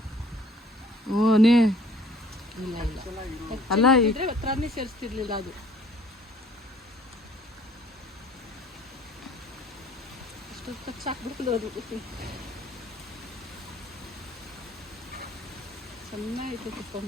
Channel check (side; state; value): both; normal; correlation 0.56